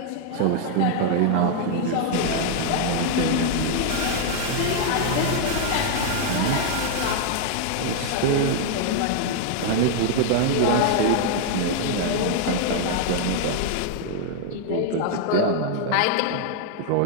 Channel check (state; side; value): different; both; correlation 0.00